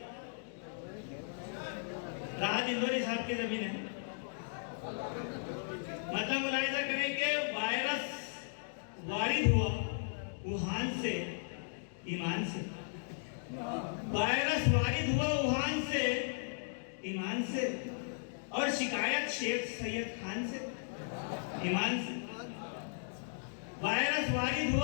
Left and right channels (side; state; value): right; silent; digital silence